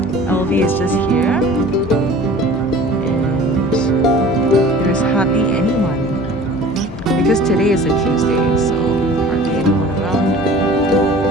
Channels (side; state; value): both; normal; correlation 0.44